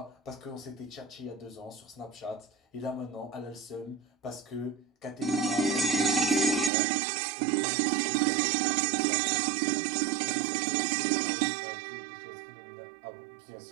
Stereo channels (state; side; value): drops out; left; at 6.7 s